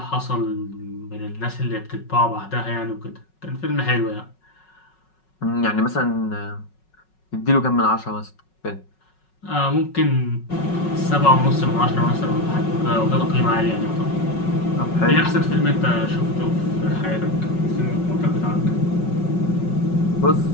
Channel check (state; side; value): late; right; 5.4 ms